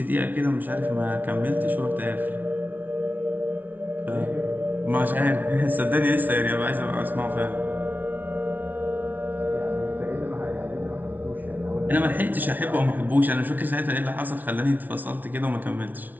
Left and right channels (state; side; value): late; left; 0.081 ms